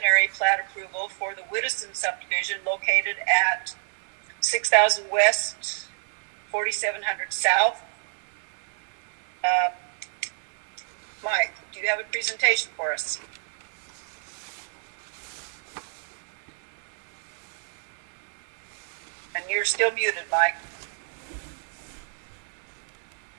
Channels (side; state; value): left; silent; 59 dB below the other